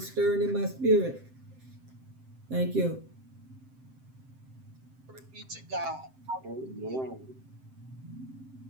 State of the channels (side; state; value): left; late; 7.7 ms